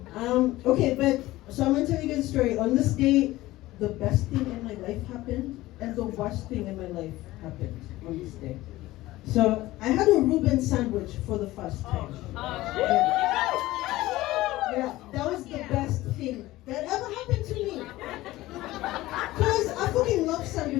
Okay, but so I'm gonna tell you guys a story. On this day, the best thing in my life happened, and the worst thing in my life happened on this day. So I had a Reuben sandwich for the first time. Yeah, that was the best thing that ever happened to me. Because I fucking love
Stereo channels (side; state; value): right; quieter; 17.5 dB